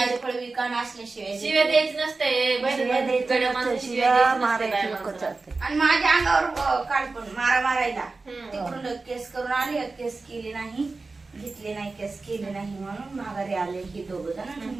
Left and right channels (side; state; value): left; quieter; 3.8 dB